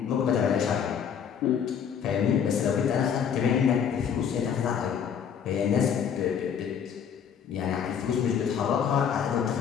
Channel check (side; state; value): right; quieter; 7.8 dB